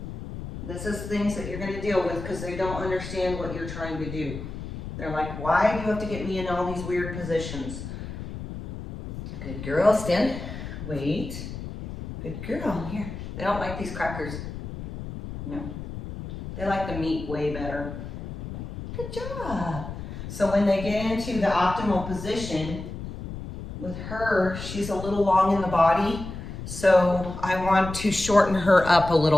This is things that you're going to deal with because they don't understand what you're trying to do. They're like, why do you have to get me in all these weird positions? Good girl, stand. Wait. Good girl, here. They don't like these crackers. No. They like the meat way better. Good job. So when they get into the optimal position, with her, she's a little long in the body, so I want to shorten her up a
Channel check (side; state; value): left; noise; rumble, 9 dB below the sound